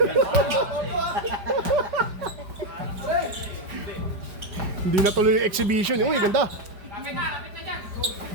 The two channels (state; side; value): late; left; 5.0 ms